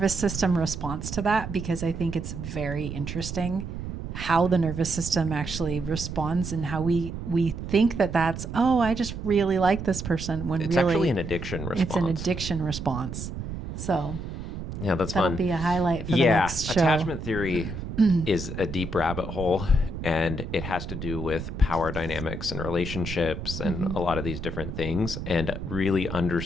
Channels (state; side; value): noise; right; rumble, 7 dB below the sound